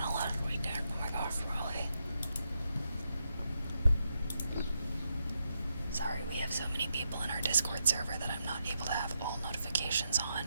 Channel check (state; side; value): inverted; both; correlation -0.82